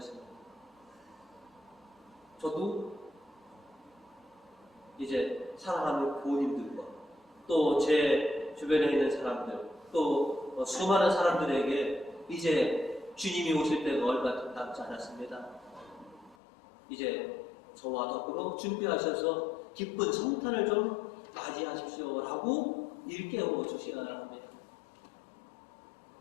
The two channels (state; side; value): drops out; right; at 16.4 s